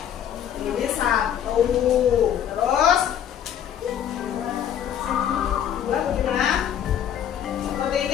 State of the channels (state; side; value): quieter; right; 9.7 dB